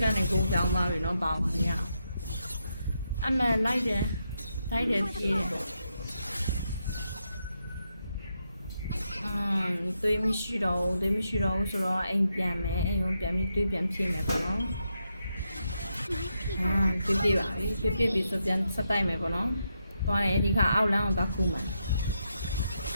ကနေကိုကြောင်းသွားပြီနော်ပေါင်းပါရအမှန်လိုက်တယ်ပြေးတယ်တွေးမရှိတော့ဘူးဆိုတော့အိမ်ပြန်မယ်အိမ်ကိုပြန်ပြီးတွေးပြန်ဖြည့်မယ်ပေါ့နော်ပြေးပါပြီပြေးပြီးဆိုပြန်ဆက်တိုက်မယ်ပေါ့နော်သွားတယ်ဒီခါအောက်လမ်းကိုသွားခုမယ်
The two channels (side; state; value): both; inverted; correlation -0.83